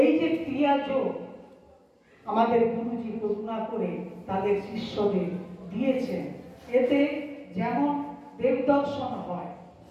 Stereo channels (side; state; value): both; identical; correlation 1.00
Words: এই যে ক্রিয়া যোগ আমাদের গুরুজি করুণা করে তাদের শিষ্যদের দিয়েছেন, এতে যেমন দেবদর্শন হয়,